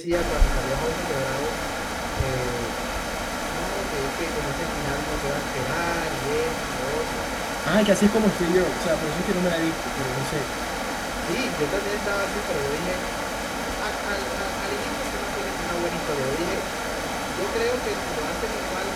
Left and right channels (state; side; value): identical; both; correlation 1.00